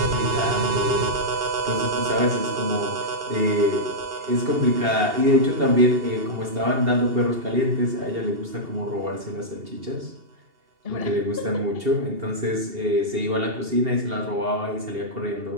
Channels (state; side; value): late; left; 2.7 ms